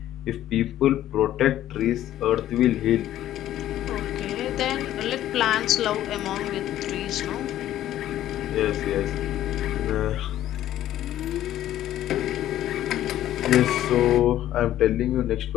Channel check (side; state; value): right; quieter; 12.8 dB